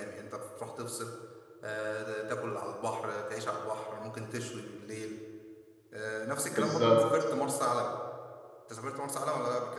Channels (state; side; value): identical; both; correlation 1.00